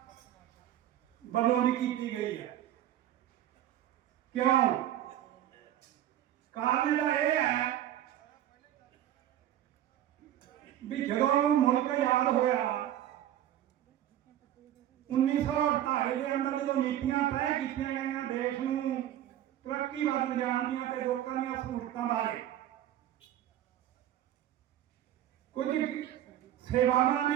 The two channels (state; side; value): quieter; left; 12.0 dB